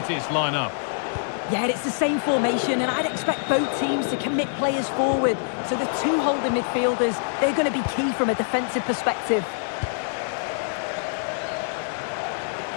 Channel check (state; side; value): silent; right; digital silence